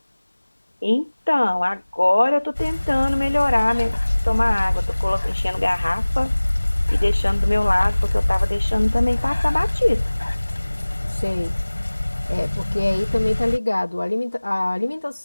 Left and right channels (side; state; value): both; inverted; correlation -1.00